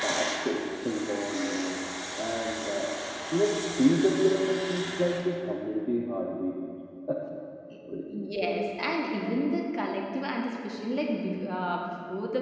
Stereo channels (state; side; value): identical; both; correlation 1.00